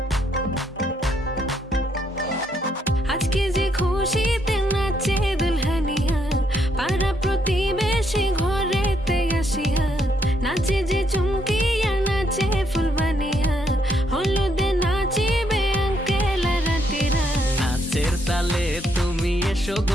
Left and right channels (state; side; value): normal; both; correlation 0.74